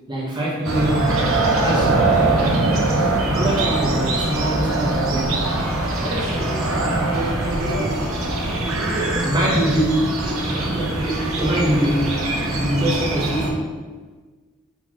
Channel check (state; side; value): normal; both; correlation 0.48